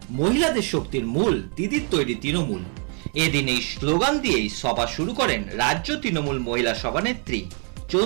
মহিলাদের শক্তির মূল দিদির তৈরি তৃণমূল, এদিন এই স্লোগান দিয়েই সভা শুরু করেন রাজ্য তৃণমূল মহিলা সভানেত্রী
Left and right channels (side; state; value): left; quieter; 39.5 dB